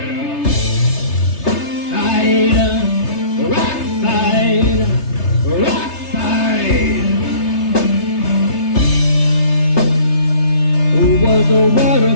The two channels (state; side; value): late; right; 3.3 ms